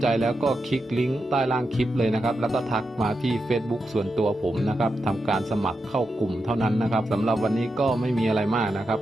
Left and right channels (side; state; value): both; normal; correlation 0.87